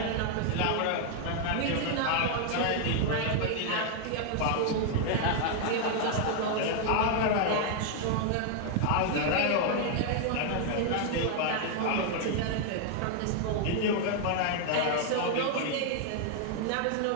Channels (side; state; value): both; different; correlation 0.00